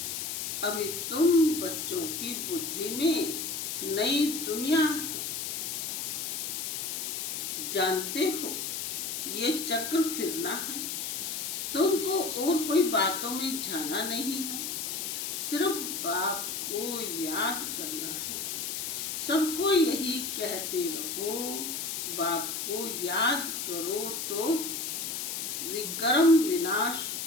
अभी तुम बच्चों की बुद्धि में नई दुनिया जानते हो, ये चक्र फिरना है। तुमको और कोई बातों में जाना नहीं है, सिर्फ बाप को याद करना है। सबको यही कहते रहो, बाप को याद करो तो विक्रम विनाश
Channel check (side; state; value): left; noise; hiss, 3 dB below the sound